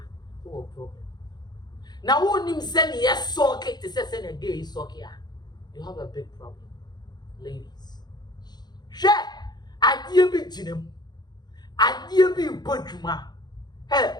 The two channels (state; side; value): late; right; 0.20 ms